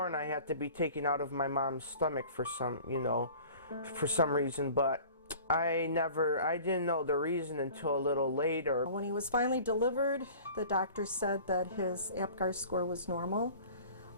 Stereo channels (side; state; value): both; inverted; correlation -0.44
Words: I had to be taken out of my mom's stomach for some reason, but I didn't know the reason until a little later. When he was finally delivered, the doctor said that his Apgar score was normal,